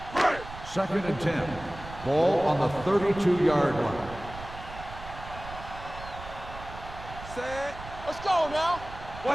Second and 10. Ball on the 32-yard line. Set. Let's go now.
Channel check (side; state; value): right; noise; rumble, 13 dB below the sound